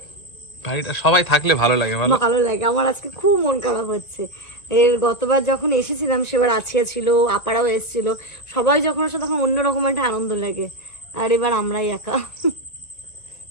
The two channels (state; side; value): late; right; 2.1 ms